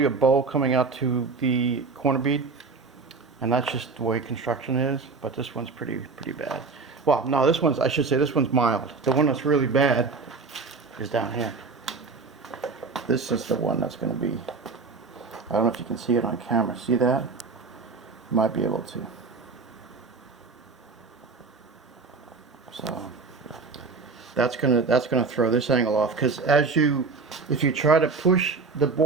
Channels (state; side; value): quieter; left; 4.4 dB